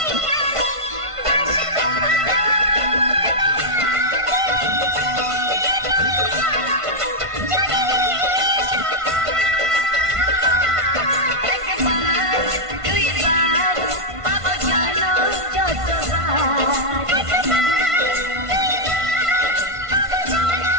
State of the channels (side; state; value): left; late; 1.5 ms